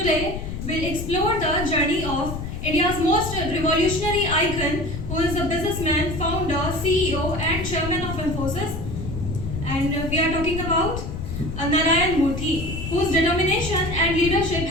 we'll explore the journey of India's most revolutionary icon, who is a businessman, founder, CEO, and chairman of Infosys. And we are talking about Narayan Murthy, whose determination and leadership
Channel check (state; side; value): noise; left; rumble, 6 dB below the sound